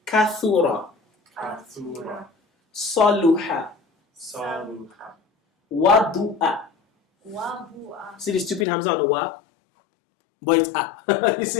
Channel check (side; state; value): right; drops out; at 8.7 s